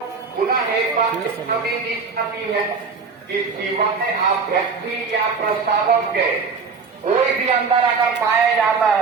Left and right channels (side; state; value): left; quieter; 5.0 dB